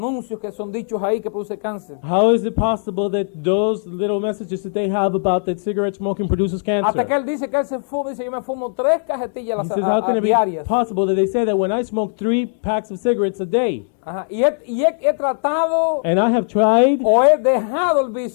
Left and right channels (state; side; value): silent; right; digital silence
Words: que son dichos ahí que produce cáncer? How is it possible that those little messages that they have about that cigarette smoking produces Hasta que cancer? él dice que él se fuma, dice yo me fumo 3 cajetillas He says, how can it be diarias. possible that they say that when I smoke 3 packs of cigarettes a day, Ajá. Y he tratado and I have tried, o he dejado el